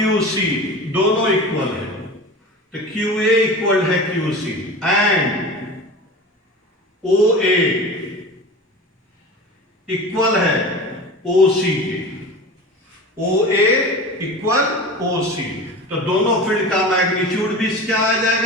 सी दोनों इक्वल है, तो क्यू ए इक्वल है Q C and O A equal है ओ सी के। ओ ए इक्वल ओ सी, तो दोनों फील्ड का मैग्नीट्यूड भी क्या आ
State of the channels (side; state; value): both; normal; correlation 0.33